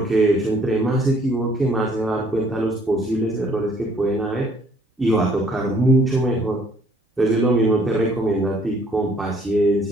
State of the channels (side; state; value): both; normal; correlation 0.61